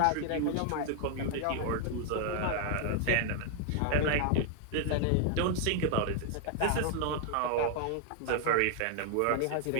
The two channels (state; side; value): different; both; correlation 0.00